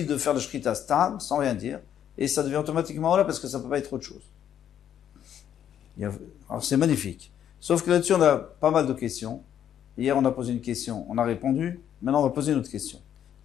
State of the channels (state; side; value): quieter; right; 9.8 dB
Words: de faire le Shrita Stam sans rien dire et ça devient automatiquement Ola parce que ça ne peut pas être autre chose. Alors c'est magnifique. Sauf que là-dessus on a pas mal de questions. Hier on a posé une question, on a répondu, maintenant on va poser une autre question.